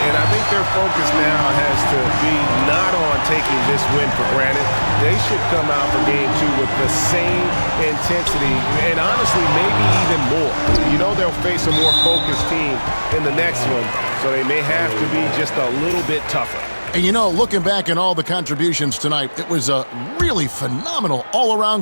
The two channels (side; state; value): both; inverted; correlation -1.00